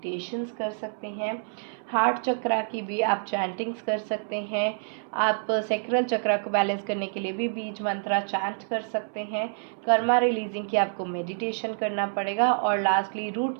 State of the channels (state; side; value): silent; left; 60 dB below the other